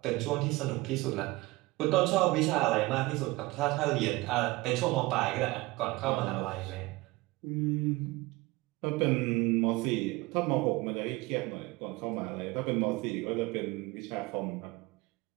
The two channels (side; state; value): left; quieter; 21.6 dB